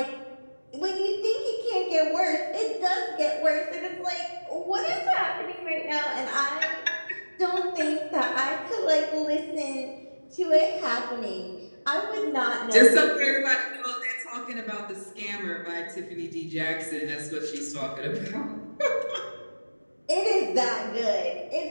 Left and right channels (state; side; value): inverted; both; correlation -1.00